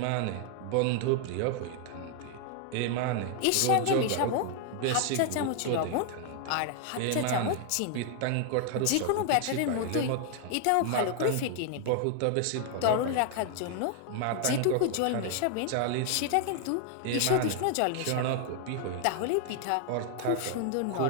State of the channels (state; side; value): different; both; correlation 0.00